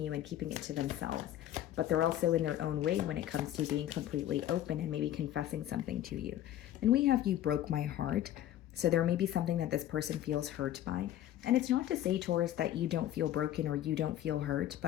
and keeping it to themselves. But they're also in their own way when it comes to being completely open and maybe confessing something to you. And we have You Broke My Heart. So there may be something that this person feels hurt by. And it's not to say, Taurus, that you don't feel broken or you don't feel hurt,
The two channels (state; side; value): quieter; right; 12.3 dB